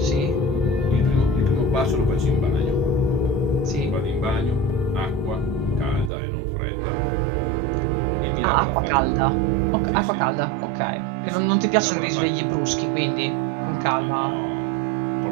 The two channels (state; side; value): drops out; left; at 6.1 s